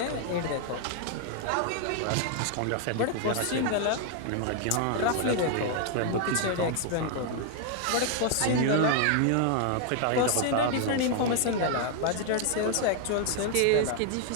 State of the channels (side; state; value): both; different; correlation 0.00